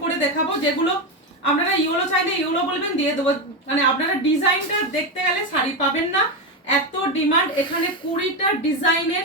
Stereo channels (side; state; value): both; normal; correlation 0.12